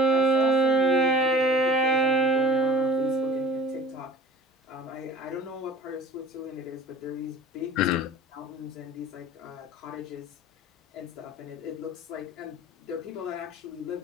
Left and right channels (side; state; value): both; normal; correlation 0.44